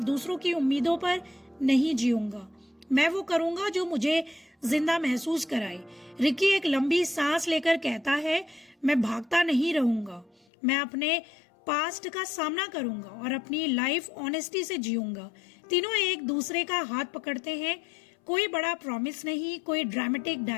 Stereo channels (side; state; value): right; drops out; at 10.5 s